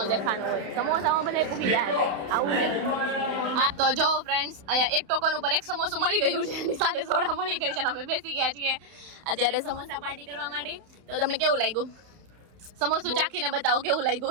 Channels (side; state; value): left; late; 31 ms